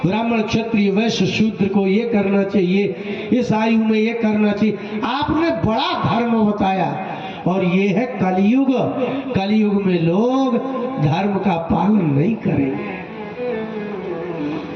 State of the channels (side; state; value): both; identical; correlation 1.00